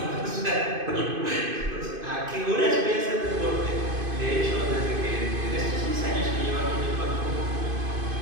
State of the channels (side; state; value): left; late; 2.5 ms